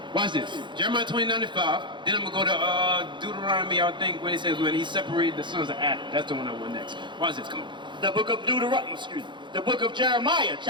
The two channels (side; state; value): left; late; 0.23 ms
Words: Watch this. Jeremiah 29:5. Then I'm going to go to Deuteronomy, I think, when it says when he separated the sons of Adam. That's the one I want next. Watch this. Come on. The book of the book of Jeremiah,